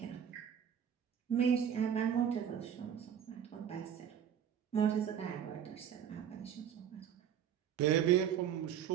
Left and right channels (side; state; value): left; quieter; 8.9 dB